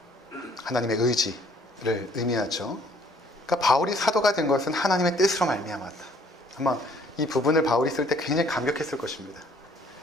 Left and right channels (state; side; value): normal; both; correlation 0.60